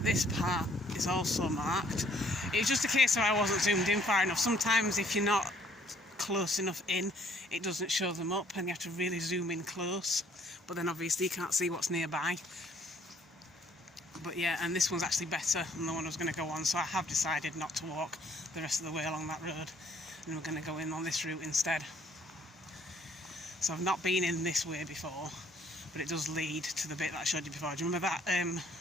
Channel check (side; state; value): both; normal; correlation 0.62